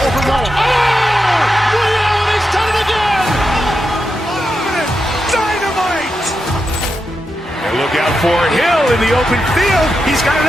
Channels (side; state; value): both; normal; correlation 0.87